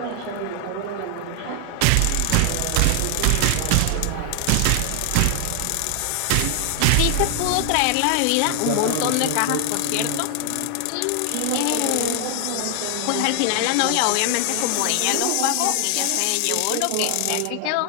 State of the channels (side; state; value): both; different; correlation 0.00